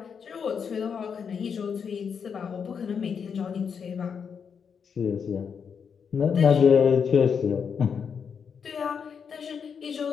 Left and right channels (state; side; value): quieter; right; 6.7 dB